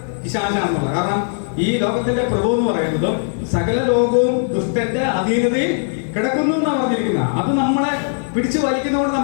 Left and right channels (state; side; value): silent; right; digital silence